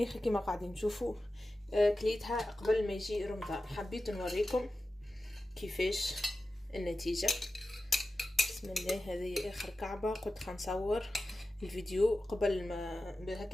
كما قاعدين تشوفوا. كليتها قبل ما يجي رمضان. حبيت نوريكم كيفاش النتيجة. بسم الله، هذه اخر كعبة. قلت خنصور الفيديو قبل ما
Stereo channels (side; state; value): both; normal; correlation 0.93